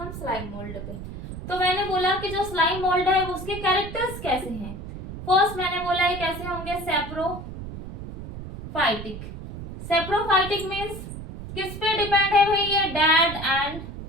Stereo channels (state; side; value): noise; right; rumble, 10 dB below the sound